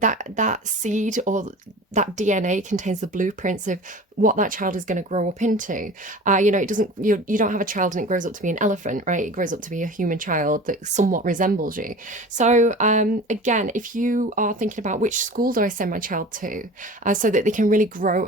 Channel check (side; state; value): both; normal; correlation 0.38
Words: seed or that DNA contains the blueprints of what that child is going to grow up into. It doesn't, you don't have a child and it grows up to be an elephant, right? It grows up to be a human child that somewhat resembles you. So again, if you are thinking about which school do I send my child to, so that they can really